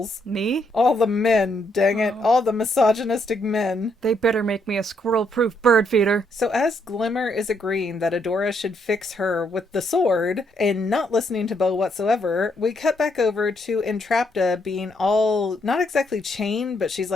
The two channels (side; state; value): both; normal; correlation 0.74